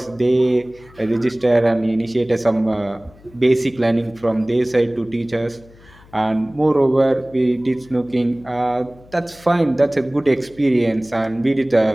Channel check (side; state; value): left; noise; hum, 25 dB below the sound